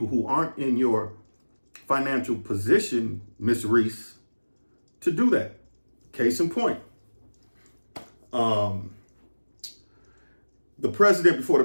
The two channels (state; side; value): inverted; both; correlation -1.00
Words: who aren't in your financial position, Miss Reese, to do that. Case in point. The president before the